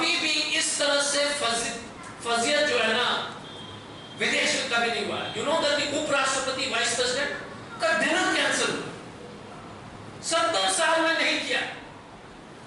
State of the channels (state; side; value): identical; both; correlation 1.00